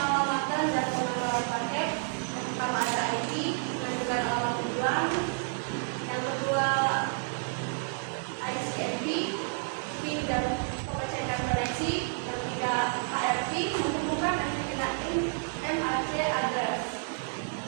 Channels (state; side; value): silent; left; 56 dB below the other